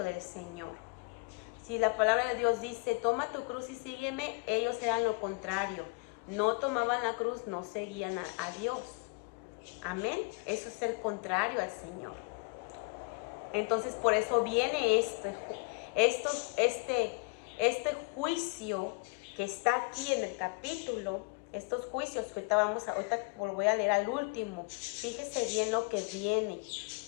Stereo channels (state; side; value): quieter; right; 31.4 dB